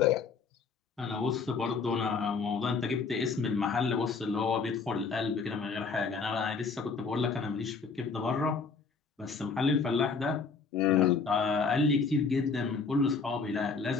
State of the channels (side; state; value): right; quieter; 4.9 dB